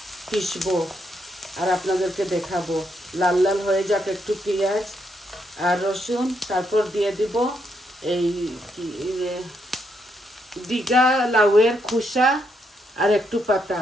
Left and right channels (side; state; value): both; normal; correlation 0.77